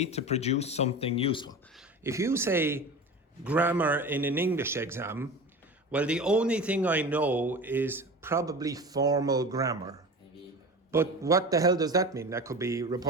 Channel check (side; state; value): both; normal; correlation 0.32